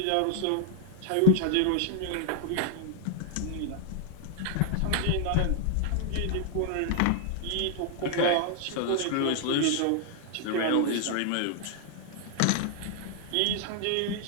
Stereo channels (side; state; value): both; different; correlation 0.00